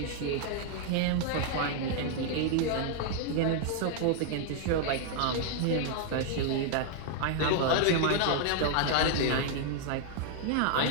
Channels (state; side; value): different; both; correlation 0.00